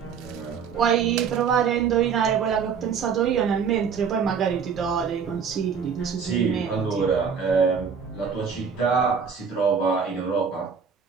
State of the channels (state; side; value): quieter; left; 6.5 dB